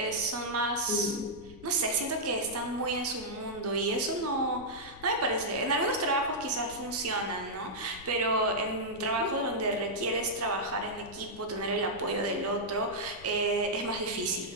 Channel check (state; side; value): noise; left; rumble, 19 dB below the sound